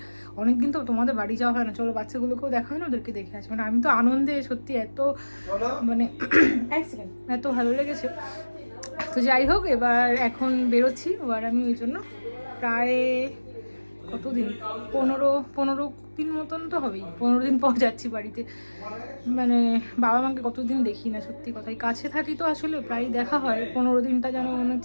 অনেকদিন তো তোমাদের বাড়ি যাওয়া হয় না, চলো বাচ্চাগুলোকেও দেখা হয় না, ওদেরকে দেখে আসি। মানে আমি তো আনন্দে সত্যি এত মানে এত ভালো লেগেছে। তো যাই হোক, এবার এখন বেরোচ্ছি। এবার আমি ওই জন্য প্রায় কতদিন 15 দিন মতন তো হবেই, 15 দিন পর যাচ্ছি বাড়িতে। মানে বাবা মাকে কতদিন দেখি না, সত্যি কথাই। কাছে থাকি তো আসলে প্রায় দেখা হয়, 15 দিনটা যেন মনে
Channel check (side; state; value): both; inverted; correlation -1.00